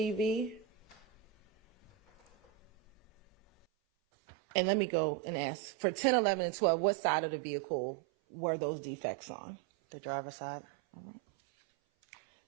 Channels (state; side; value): drops out; left; at 3.7 s